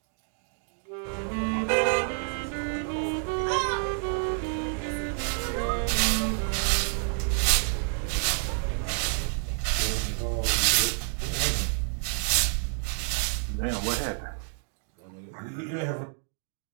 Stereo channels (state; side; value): silent; left; 56 dB below the other